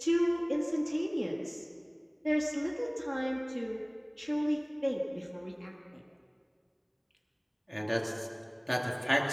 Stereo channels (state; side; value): identical; both; correlation 1.00